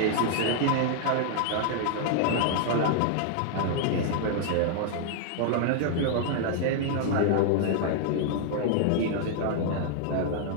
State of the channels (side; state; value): both; different; correlation 0.00